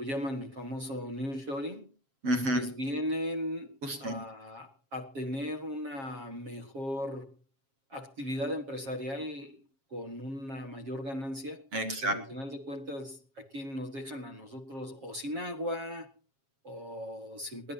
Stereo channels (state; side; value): late; left; 7.4 ms